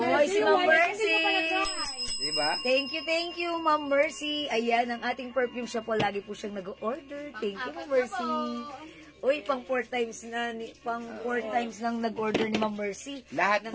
si Ma'am Mercy. Diba? Thank you, Ma'am Mercy. Ayan, ang ating perfume siya po. Lagi po siyang nag-order. Thank you, Ma'am Mercy. Uy, pang 4 times nang nag-order ni Ma'am Mercy. Lahat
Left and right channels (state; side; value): identical; both; correlation 1.00